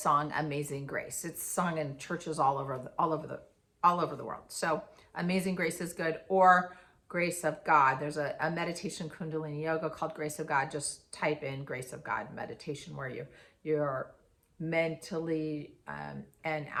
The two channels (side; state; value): both; identical; correlation 1.00